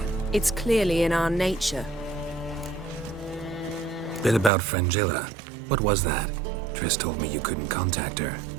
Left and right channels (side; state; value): left; drops out; at 4.5 s